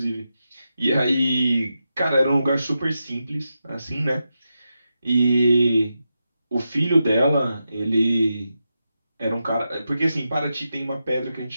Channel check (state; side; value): inverted; both; correlation -0.88